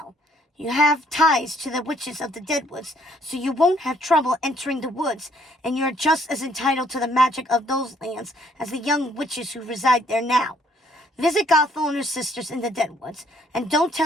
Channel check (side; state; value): both; normal; correlation 0.65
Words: You have ties to the witches of the Deadwoods, so you won't have trouble entering the woods, and you're just as entitled to the magic of those lands as the young witches who reside there now. Visit Gothel and her sisters in the Deadwoods, and don't